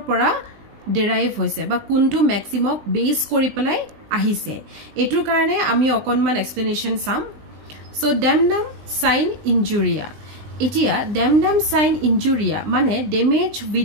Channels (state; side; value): late; left; 20 ms